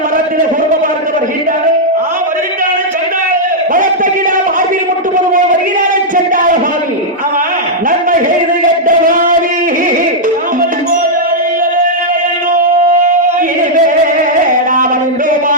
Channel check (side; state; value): both; normal; correlation -0.06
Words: மரத்தில குடும்ப பார்க்க வருகின்றானே வருகின்றானே சண்டாள மரத்தகிடா மார்பில் முட்டுவது போல் வருகிறானே சண்டாள பாவி ஆமா நன்மை செய்து கெட்ட பாவி